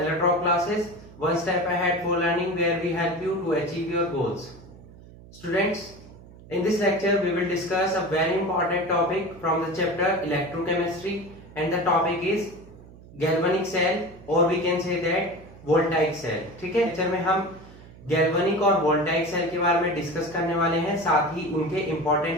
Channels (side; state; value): right; noise; hum, 20 dB below the sound